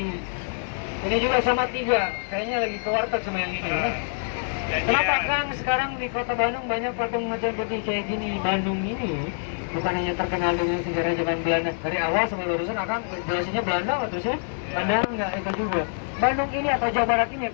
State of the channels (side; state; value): right; silent; digital silence